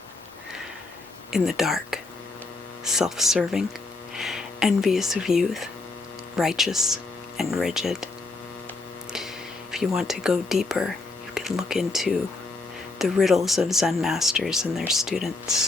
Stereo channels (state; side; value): quieter; right; 3.4 dB